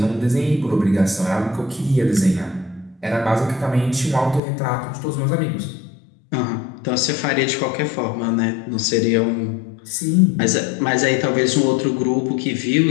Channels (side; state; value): right; drops out; at 4.4 s